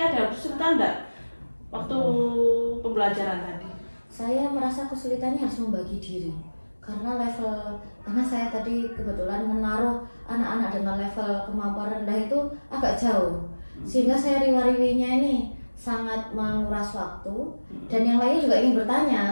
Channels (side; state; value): both; inverted; correlation -1.00